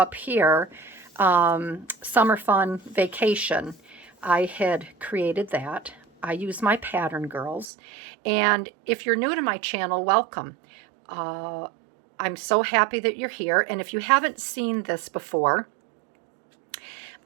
here, Summer Fun Vacation. I had created that. I use my pattern girls. And if you're new to my channel, welcome. I'm so happy that you're here. And if you haven't seen this before,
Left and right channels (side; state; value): left; drops out; at 7.7 s